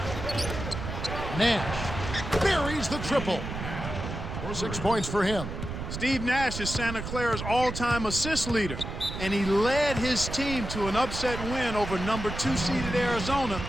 Nash buries the triple. 6 points for him. Steve Nash is Santa Clara's all-time assist leader, and he led his team to an upset win over number 2 seeded Arizona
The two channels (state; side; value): noise; right; rumble, 7 dB below the sound